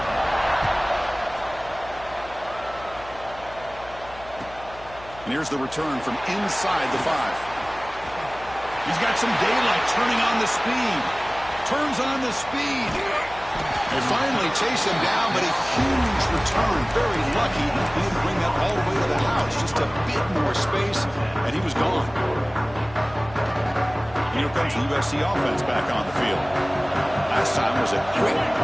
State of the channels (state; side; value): noise; left; hum, 19 dB below the sound